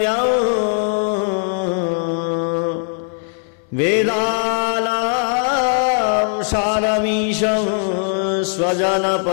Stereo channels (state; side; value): silent; right; 59 dB below the other